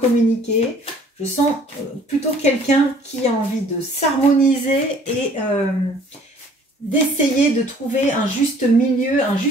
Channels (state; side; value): normal; both; correlation 0.55